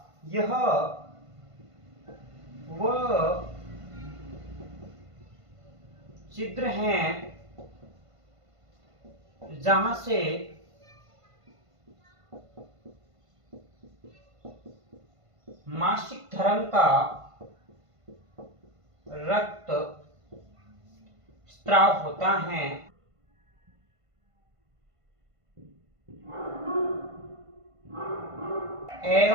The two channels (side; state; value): left; late; 1.5 ms